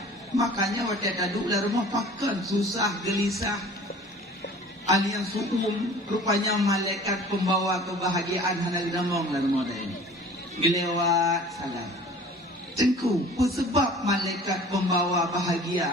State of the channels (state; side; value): normal; both; correlation 0.46